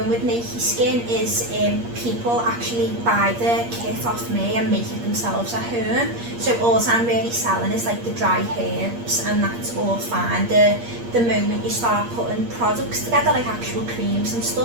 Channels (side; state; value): left; late; 8.5 ms